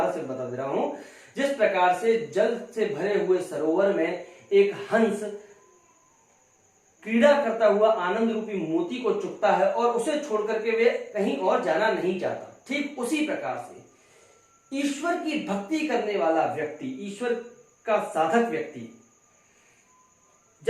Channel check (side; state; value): both; identical; correlation 1.00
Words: से बता दे रहा हूं, जिस प्रकार से जल से भरे हुए सरोवर में एक हंस क्रीड़ा करता हुआ आनंद रूपी मोती को चुगता है और उसे छोड़ करके वे कहीं और जाना नहीं चाहता, ठीक उसी प्रकार से ईश्वर की भक्ति करने वाला व्यक्ति, ईश्वर का साधक व्यक्ति,